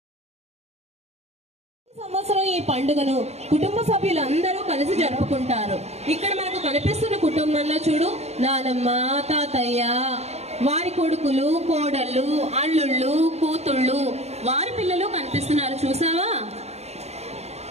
సంవత్సరం ఈ పండుగను కుటుంబ సభ్యులందరూ కలిసి జరుపుకుంటారు. ఇక్కడ మనకు కనిపిస్తున్న కుటుంబంలో చూడు, నానమ్మ, తాతయ్య, వారి కొడుకులు, కోడళ్ళు, అల్లుళ్ళు, కూతుళ్ళు, వారి పిల్లలు కనిపిస్తున్నారు. చూసావా?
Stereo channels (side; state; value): left; late; 0.31 ms